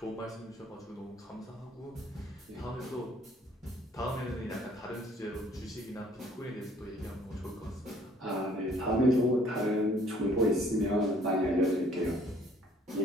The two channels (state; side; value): normal; both; correlation 0.59